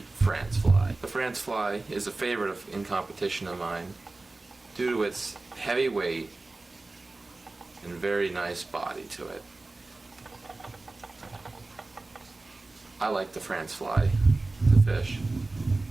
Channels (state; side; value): quieter; left; 3.2 dB